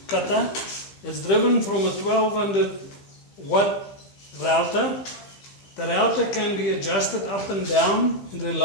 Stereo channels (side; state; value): right; late; 15 ms